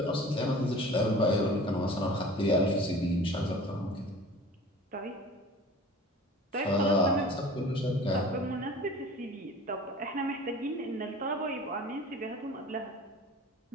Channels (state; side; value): normal; both; correlation 0.42